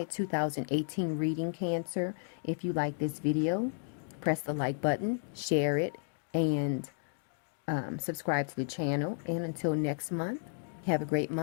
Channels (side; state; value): right; silent; digital silence